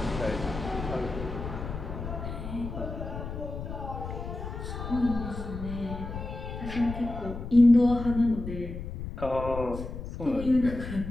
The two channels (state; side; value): noise; left; rumble, 7 dB below the sound